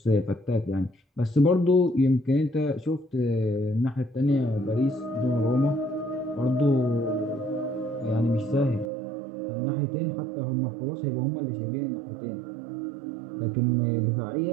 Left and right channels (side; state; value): left; drops out; at 8.9 s